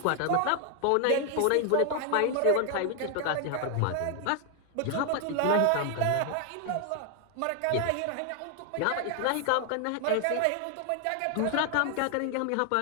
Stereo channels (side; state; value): both; different; correlation 0.00